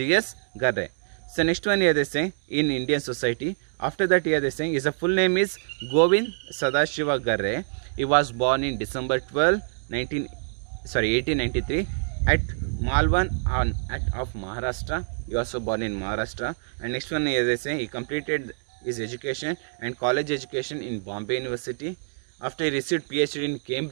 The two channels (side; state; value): left; silent; digital silence